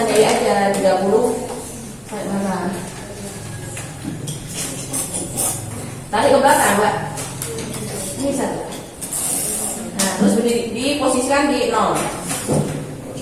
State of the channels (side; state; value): both; identical; correlation 1.00